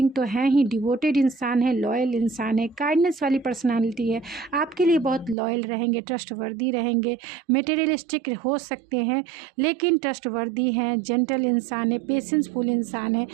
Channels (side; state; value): left; drops out; at 5.4 s